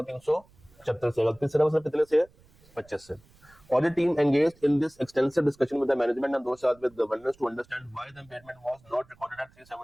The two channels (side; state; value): right; noise; rumble, 29 dB below the sound